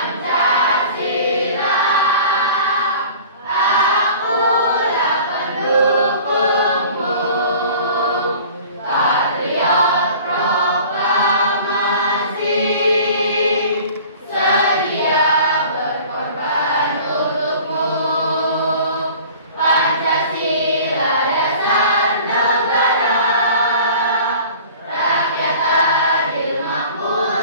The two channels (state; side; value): inverted; both; correlation -0.45